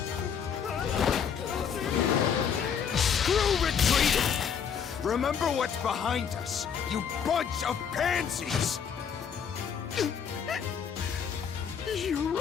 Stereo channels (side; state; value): right; quieter; 7.3 dB